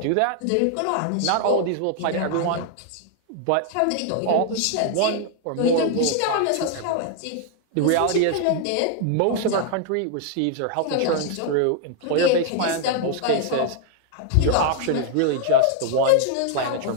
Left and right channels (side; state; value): both; different; correlation 0.00